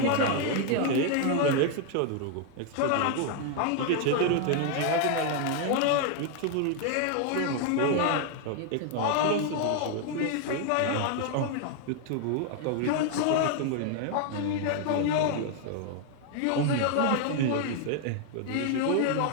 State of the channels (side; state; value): both; different; correlation 0.00